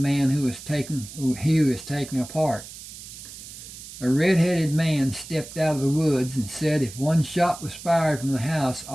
who was taking apart. A red-headed man stepped out of the woods and said if one shot was fired from the house,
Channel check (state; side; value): noise; right; hiss, 14 dB below the sound